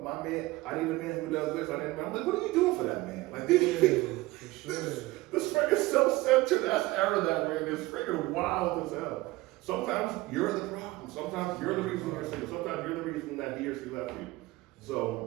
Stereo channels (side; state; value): left; quieter; 19.8 dB